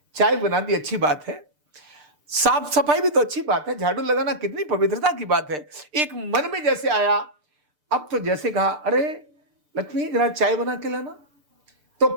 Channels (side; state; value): left; late; 6.7 ms